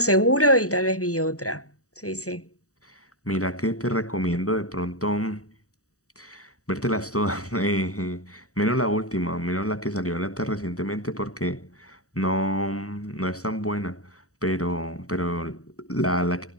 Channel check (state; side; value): late; right; 0.65 ms